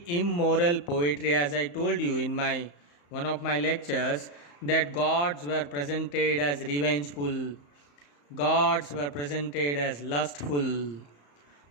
immoral poetry. As I told you in one of my lectures, that gods were presented as revengeful, gods were presented as lustful,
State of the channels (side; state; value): right; late; 35 ms